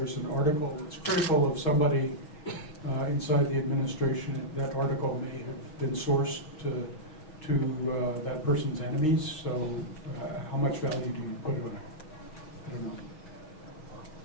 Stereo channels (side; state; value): right; late; 6.4 ms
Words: an article that's critical of somebody inside the administration, that article may have been sourced to that person's enemies. So how much value do you put on it? I don't know.